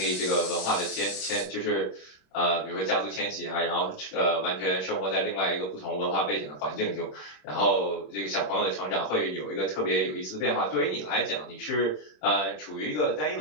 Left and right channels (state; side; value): late; right; 27 ms